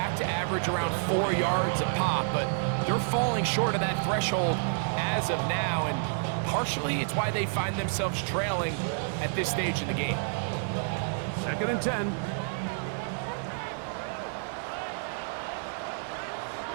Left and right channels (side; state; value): left; silent; 58 dB below the other